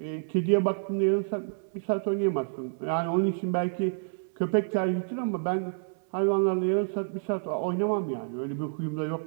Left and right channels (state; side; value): silent; left; digital silence